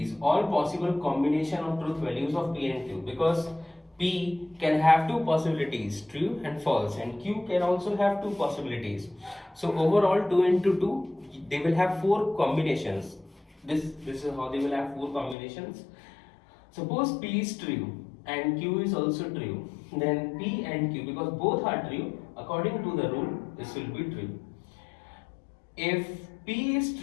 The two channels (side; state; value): right; drops out; at 15.4 s